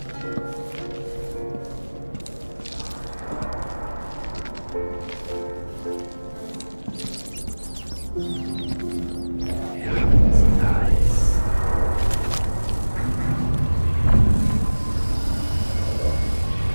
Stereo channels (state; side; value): inverted; both; correlation -1.00